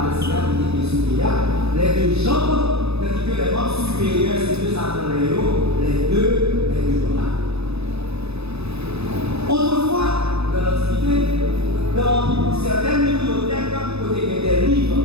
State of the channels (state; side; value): late; left; 0.79 ms